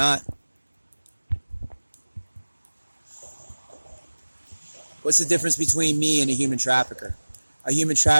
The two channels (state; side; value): inverted; both; correlation -1.00